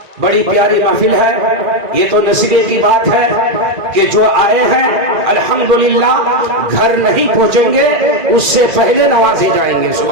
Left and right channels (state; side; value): late; left; 2.4 ms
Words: بڑی پیاری محفل ہے، یہ تو نصیبے کی بات ہے کہ جو آئے ہیں الحمدللہ گھر نہیں پہنچیں گے اس سے پہلے نوازے جائیں گے،